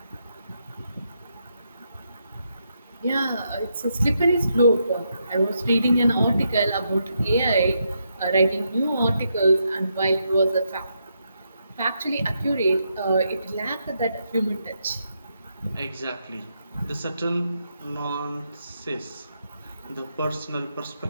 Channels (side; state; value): both; inverted; correlation -0.80